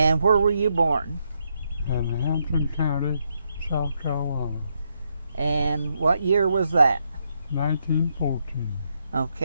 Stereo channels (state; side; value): inverted; both; correlation -0.79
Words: where were you born? In Hampton County, South Carolina. And what year was that? 1914.